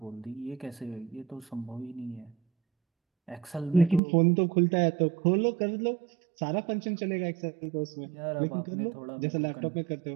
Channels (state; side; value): drops out; left; at 4.0 s